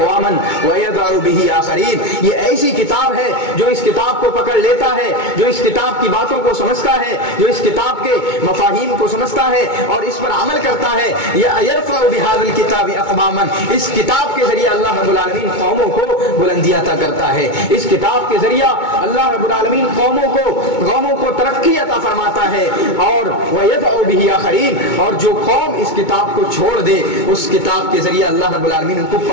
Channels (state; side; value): late; right; 2.2 ms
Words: ویضع بہ آخرین، یہ ایسی کتاب ہے جو اس کتاب کو پکڑ لیتا ہے، جو اس کتاب کی باتوں کو سمجھتا ہے، جو اس کتاب کے مفاہیم کو سمجھتا ہے اور اس پر عمل کرتا ہے، یرفع بہذا الکتاب اقواما، اس کتاب کے ذریعے اللہ رب العالمین قوموں کو بلندی عطا کرتا ہے، اس کتاب کے ذریعہ اللہ رب العالمین قوموں کو ترقی عطا فرماتا ہے، اور وَيَدْعُ بِهِ آخَرِينَ، اور جو قوم اس کتاب کو چھوڑ دے اس کتاب کے ذریعے اللہ رب العالمین ان کو